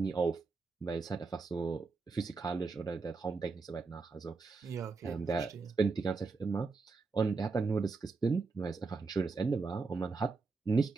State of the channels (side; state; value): left; quieter; 4.3 dB